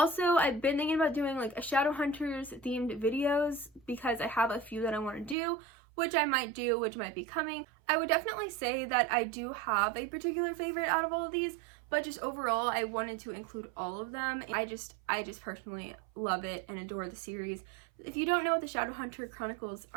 I've been thinking about doing like a Shadowhunters themed videos because I have a few that I want to do, which I might do, which might be coming. I would definitely say that I do have a particular favorite out of all of these, but just overall, I wanted to include all of them. I just personally love it and adore the series. If you don't know what the Shadowhunter Chronicles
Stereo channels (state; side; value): drops out; left; at 5.4 s